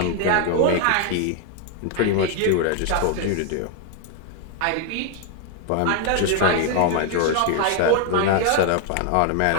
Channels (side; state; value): both; different; correlation 0.01